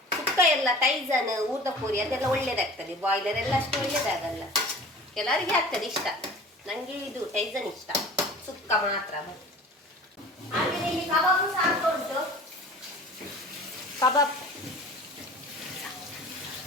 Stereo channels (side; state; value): both; normal; correlation 0.42